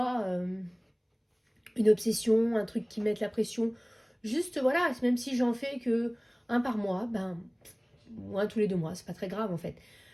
une obsession, un truc qui mette la pression. Juste, voilà, même si j'en fais que un par mois, ou un tous les 2 mois, c'est pas très grave en fait.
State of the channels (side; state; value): both; identical; correlation 1.00